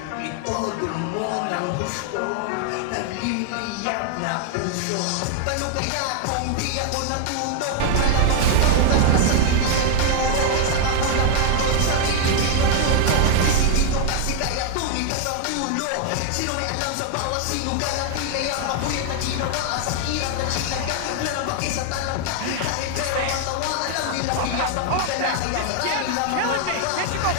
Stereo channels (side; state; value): both; different; correlation 0.00